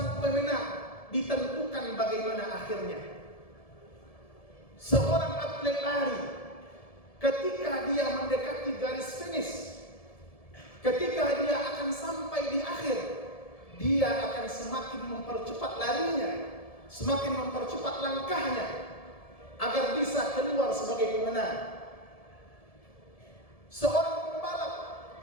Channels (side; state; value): right; late; 1.7 ms